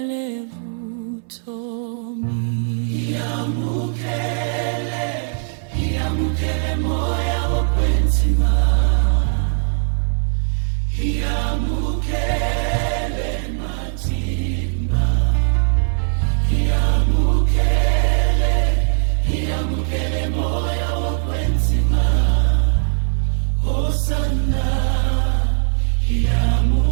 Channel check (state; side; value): silent; left; 66 dB below the other